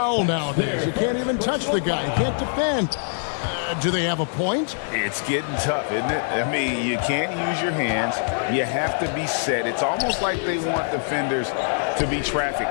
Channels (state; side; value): silent; right; 63 dB below the other